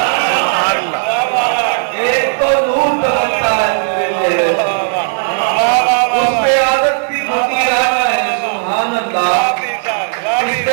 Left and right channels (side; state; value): left; silent; digital silence